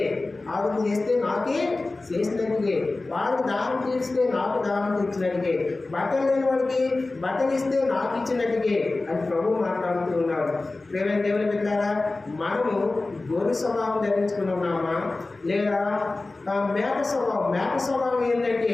ఆవిడ చేస్తే నాకే చేసినట్టుగే, వారికి దానం తీస్తే నాకు దానం తీర్చినట్టుగే, బట్టలు లేని వాడికి బట్టలు ఇస్తే నాకు ఇచ్చినట్టుగే అని ప్రభు మాట్లాడుతూ ఉన్నాడు. ప్రేమ దేవుని పెట్టారా, మనము గొర్రె స్వభావం ధరించుకున్నామా లేదా మేక స్వభావం? మేక స్వభావం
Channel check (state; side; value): quieter; right; 3.2 dB